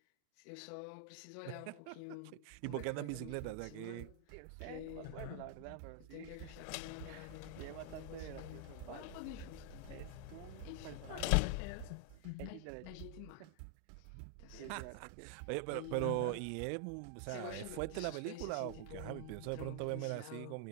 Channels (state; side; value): different; both; correlation 0.00